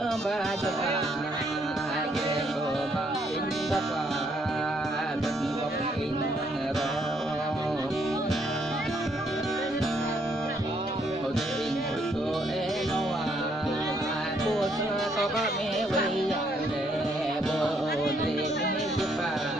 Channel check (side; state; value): both; normal; correlation 0.70